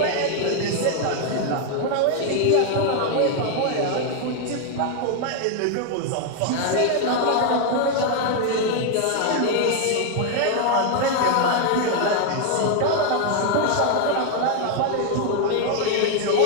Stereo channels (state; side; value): different; both; correlation 0.00